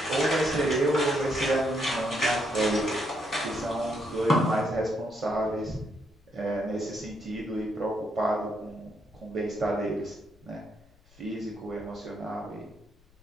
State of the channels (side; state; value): left; noise; rumble, 29 dB below the sound